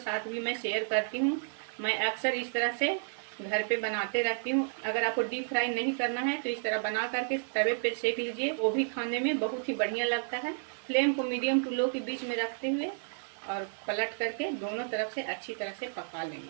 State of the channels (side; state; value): left; silent; digital silence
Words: भी मैं शेयर करती हूँ। मैं अक्सर इस तरह से घर पे बनाते रहती हूँ। अगर आपको डीप फ्राई नहीं करना है तो इस तरह बना करके तवे पे सेक लीजिए, वो भी खाने में बहुत ही बढ़िया लगता है। फ्लेम को मीडियम टू लो के बीच में रखते हुए और पलट करके दोनों तरफ से अच्छी तरह से पका